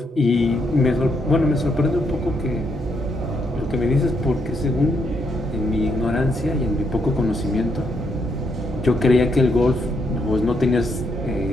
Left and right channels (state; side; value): normal; both; correlation 0.77